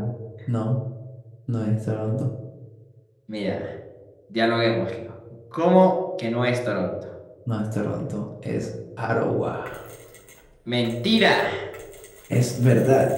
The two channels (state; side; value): identical; both; correlation 1.00